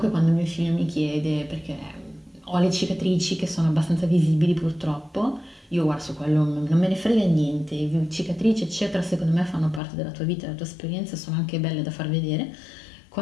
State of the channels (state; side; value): drops out; right; at 9.8 s